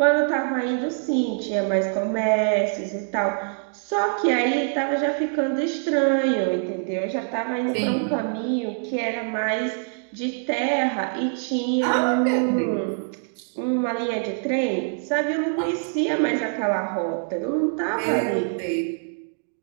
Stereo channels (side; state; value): left; silent; digital silence